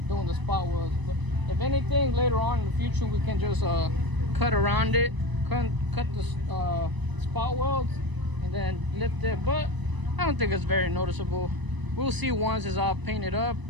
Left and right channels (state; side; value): late; left; 1.0 ms